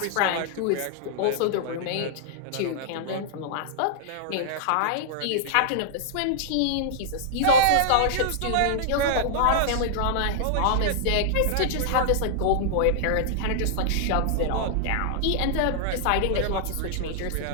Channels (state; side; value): different; both; correlation -0.01